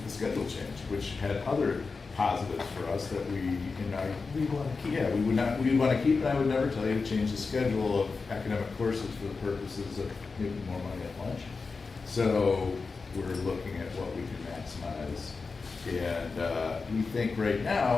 the schedule change, which had other positives for us that we want to keep. Yeah, we want to keep, and I would never tell you to change the schedule of academic courses for the purposes of making more money at lunch. So we're looking at what we can maximize. And we think right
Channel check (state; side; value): quieter; right; 4.4 dB